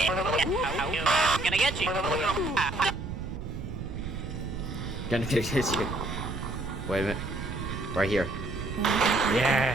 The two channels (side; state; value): right; noise; rumble, 6 dB below the sound